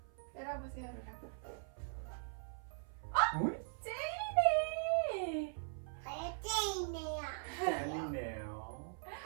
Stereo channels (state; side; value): silent; left; 51 dB below the other